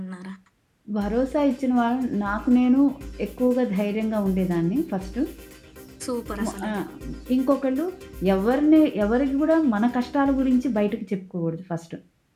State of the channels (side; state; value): both; identical; correlation 1.00